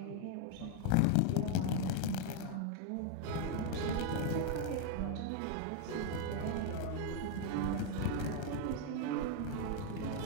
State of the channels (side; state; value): both; different; correlation 0.00